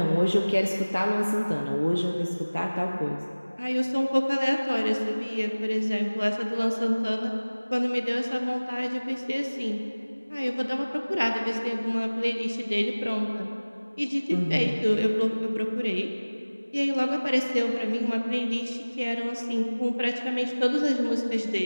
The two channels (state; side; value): inverted; both; correlation -1.00